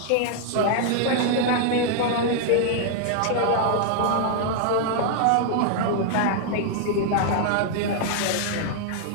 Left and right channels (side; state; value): both; different; correlation 0.00